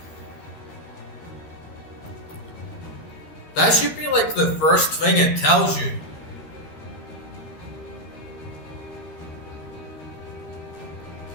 That should be like the first thing it tells you.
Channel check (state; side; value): late; right; 13 ms